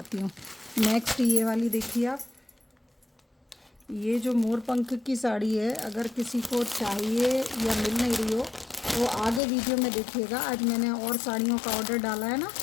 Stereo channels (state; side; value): drops out; right; at 9.4 s